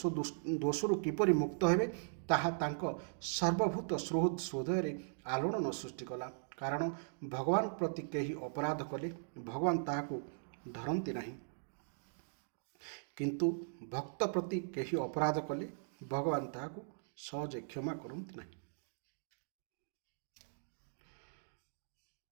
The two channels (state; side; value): silent; left; digital silence